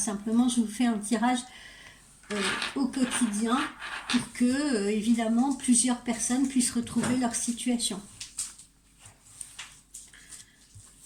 je vous fais un tirage au quotidien pour que, évidemment, plusieurs personnes puissent retrouver leur situation.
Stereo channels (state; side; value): identical; both; correlation 1.00